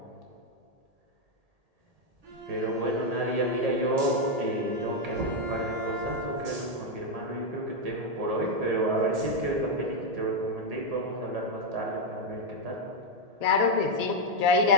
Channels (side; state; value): left; late; 1.8 ms